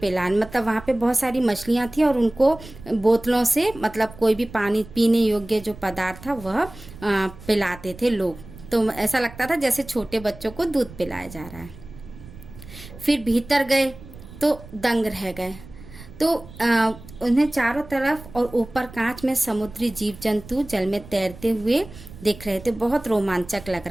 मतलब वहाँ पे बहुत सारी मछलियाँ थी और उनको बोतलों से, मतलब कोई भी पानी पीने योग्य जो पदार्थ था वह पिलाते थे लोग। तो ऐसा लगता था जैसे छोटे बच्चों को दूध पिलाया जा रहा है। फिर भीतर गए तो दंग रह गए। तो उन्हें चारों तरफ और ऊपर कांच में समुद्री जीव जंतु जल में तैरते हुए दिख रहे थे। बहुत रोमांचक लग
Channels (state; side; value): noise; right; rumble, 17 dB below the sound